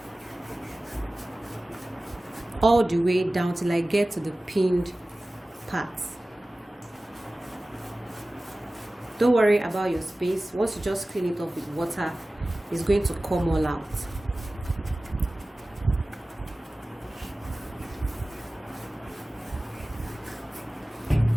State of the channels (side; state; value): both; normal; correlation 0.97